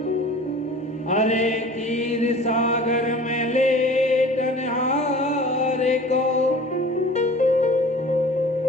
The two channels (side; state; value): both; normal; correlation 0.44